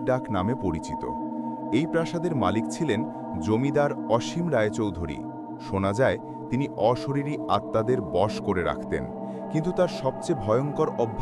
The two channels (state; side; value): identical; both; correlation 1.00